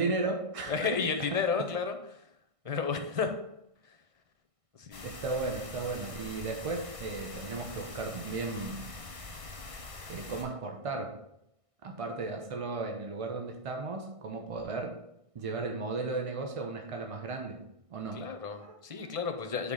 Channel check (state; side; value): late; left; 1.6 ms